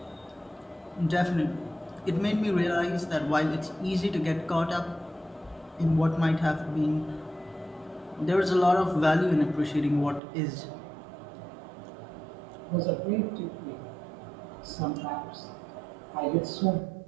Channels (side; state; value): left; drops out; at 10.2 s